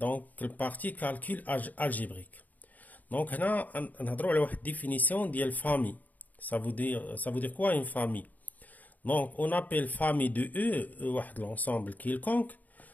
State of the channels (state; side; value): late; right; 0.079 ms